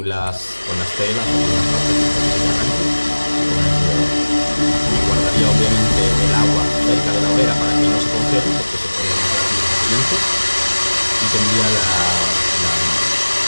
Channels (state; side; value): inverted; both; correlation -1.00